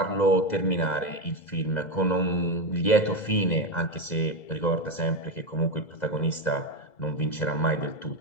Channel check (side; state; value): right; late; 2.0 ms